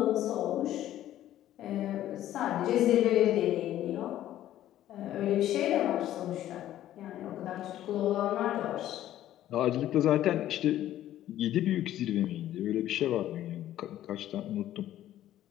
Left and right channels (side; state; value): right; quieter; 12.8 dB